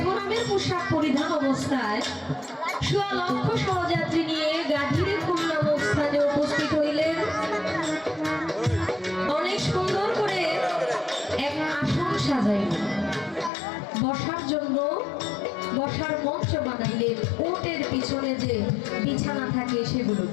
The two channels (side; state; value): right; drops out; at 13.5 s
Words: পোশাক পরিধান অবস্থায় সোয়া লক্ষ সহযাত্রী নিয়ে গাজীরে খুলনা স্থানে উপস্থিত হইলেন। অনেক সুন্দর করে এক আসন সাজাইলেন, বসার জন্য বসার মঞ্চ বানাইলেন। উটের পিছনে যে বিছানা থাকে